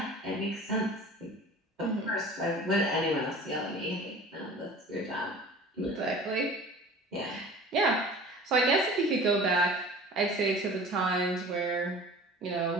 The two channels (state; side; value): normal; both; correlation 0.42